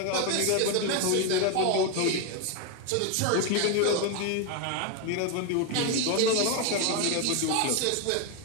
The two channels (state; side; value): different; both; correlation 0.01